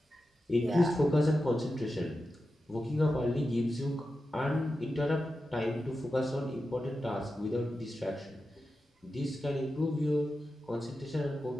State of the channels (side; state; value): both; normal; correlation 0.91